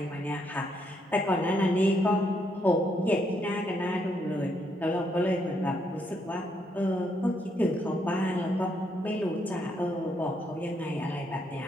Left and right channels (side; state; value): both; normal; correlation 0.75